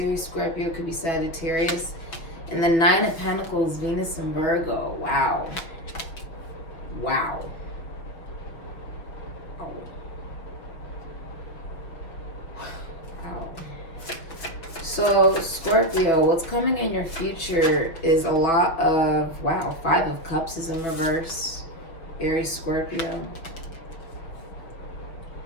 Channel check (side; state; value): right; late; 6.1 ms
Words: Scorpio. Could be Sagittarius. And the Nine of Pentacles, Venus and Virgo. Wow. Wow. Oh. Wow. So, Scorpio, what's coming in your future is a lot of, wow, Five of Cups is in reverse. Aries, Scorpio.